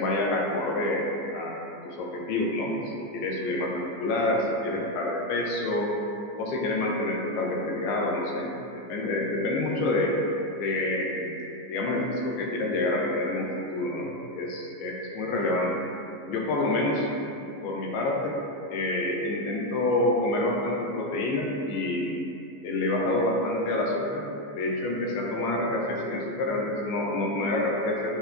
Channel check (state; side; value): late; right; 15 ms